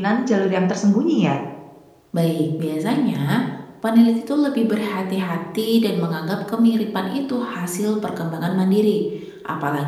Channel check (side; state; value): both; identical; correlation 1.00